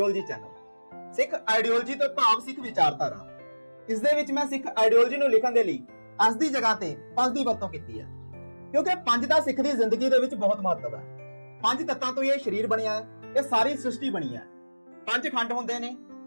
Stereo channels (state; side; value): inverted; both; correlation -1.00